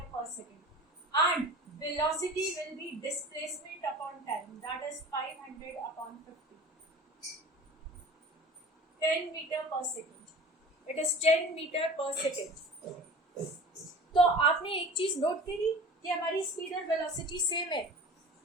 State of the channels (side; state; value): both; normal; correlation 0.40